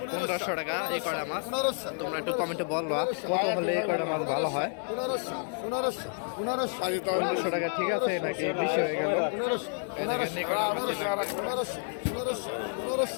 1500 টাকা এই কড়া মাছ। তোমরা একটু কমেন্টে বলবা কত হলে এই কড়া মাছ ভালো হয়। 1500 টাকা ঠিক আছে নাকি বেশি হয়ে গেল? 1500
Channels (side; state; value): right; silent; 58 dB below the other